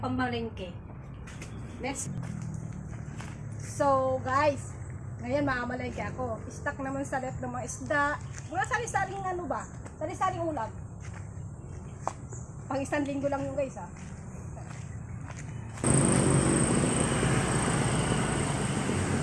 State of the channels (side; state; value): both; identical; correlation 1.00